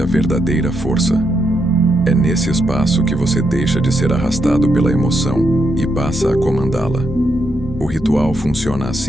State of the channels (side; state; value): both; normal; correlation 0.81